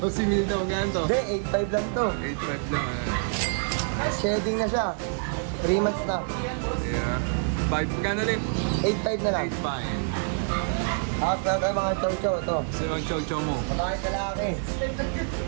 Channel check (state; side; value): silent; left; 60 dB below the other